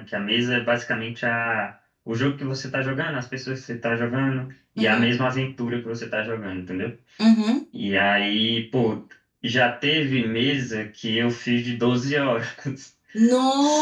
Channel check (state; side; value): identical; both; correlation 1.00